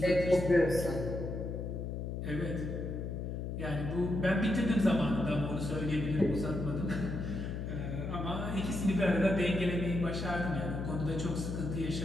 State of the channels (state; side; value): noise; left; hum, 4 dB below the sound